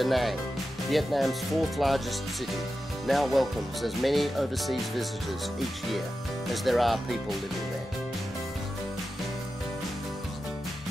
Vietnam's 4th largest city, now welcomes as many overseas visitors each year as there are people living there.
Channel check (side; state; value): both; normal; correlation 0.91